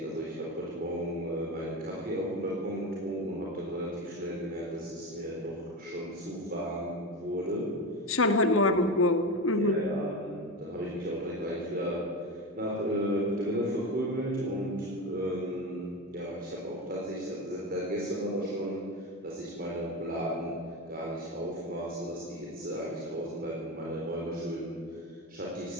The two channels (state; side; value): normal; both; correlation 0.21